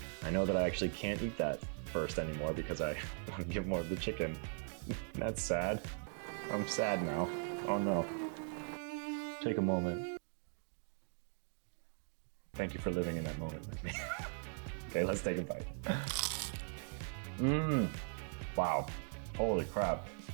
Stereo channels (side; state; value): left; silent; 51 dB below the other